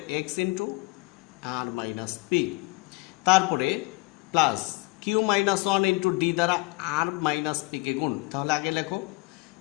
X into R minus P, তারপরে plus Q minus one into D দ্বারা আর মাইনাস পি কে গুণ, তাহলে আগে লেখো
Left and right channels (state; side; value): quieter; right; 26.0 dB